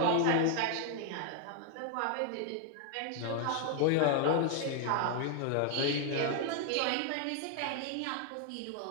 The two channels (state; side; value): different; both; correlation 0.00